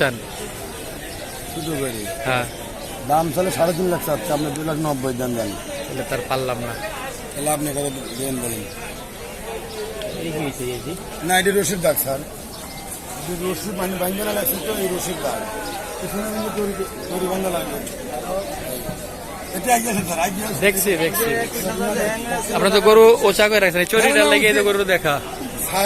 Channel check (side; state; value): both; identical; correlation 1.00